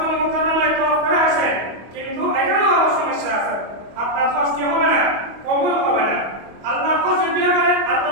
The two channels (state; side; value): late; left; 25 ms